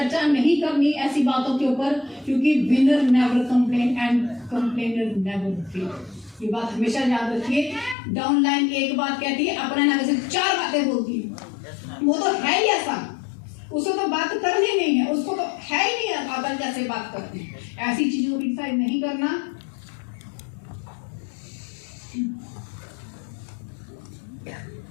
नहीं करनी ऐसी बातों के ऊपर, क्योंकि winner never complain and complainer never fail. ये बात हमेशा याद रखिए। डाउनलाइन एक बात कहती है, अपने नाम से 4 बातें बोलती है। वो तो है ही ऐसा, उसको तो बात करनी नहीं है, उसको तो है ही नहीं अदल जैसे बात करते हैं। ऐसी चीजों को क्रिटिसाइज नहीं करना।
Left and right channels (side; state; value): right; drops out; at 8.0 s